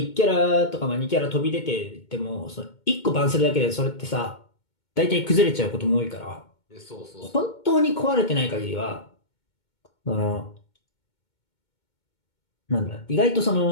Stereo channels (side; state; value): right; late; 2.2 ms